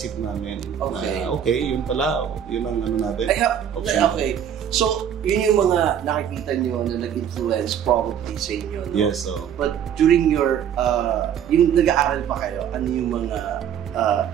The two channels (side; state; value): left; quieter; 9.1 dB